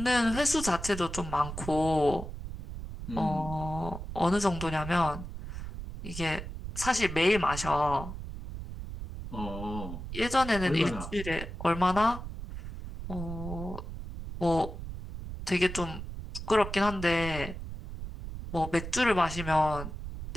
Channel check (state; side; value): noise; right; rumble, 9 dB below the sound